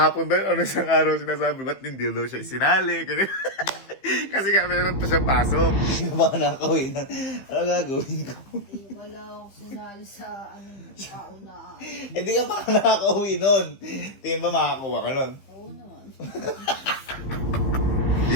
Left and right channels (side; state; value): right; late; 15 ms